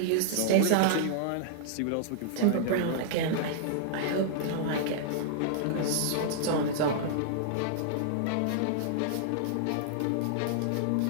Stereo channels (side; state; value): both; different; correlation -0.01